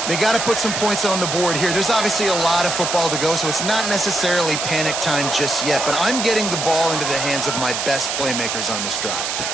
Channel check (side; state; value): right; noise; hiss, 2 dB below the sound